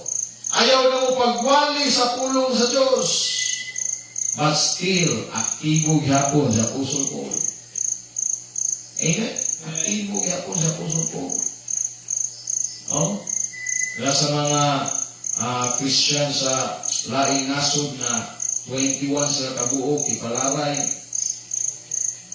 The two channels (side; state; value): both; identical; correlation 1.00